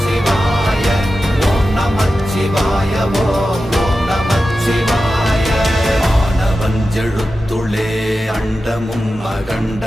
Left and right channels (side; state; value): both; normal; correlation 0.92